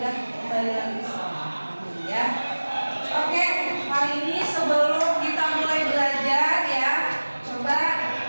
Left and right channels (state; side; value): inverted; both; correlation -1.00